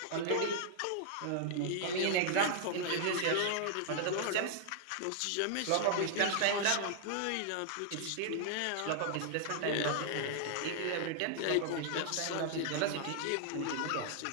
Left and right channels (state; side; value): different; both; correlation -0.01